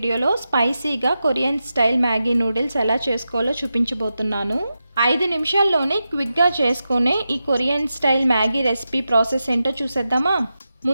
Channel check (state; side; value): inverted; both; correlation -0.90